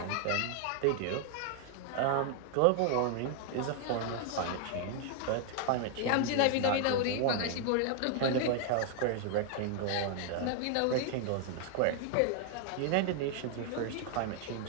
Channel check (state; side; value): different; both; correlation 0.00